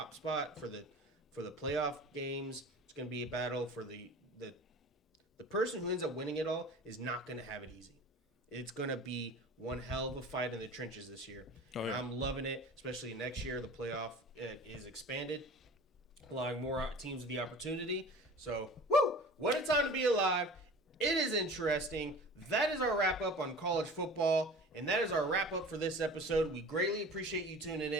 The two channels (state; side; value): normal; both; correlation 0.40